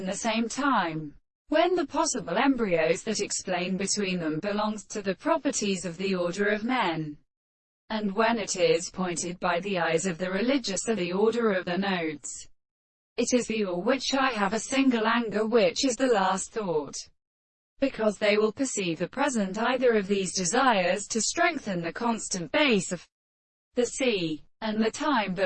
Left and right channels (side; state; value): both; identical; correlation 1.00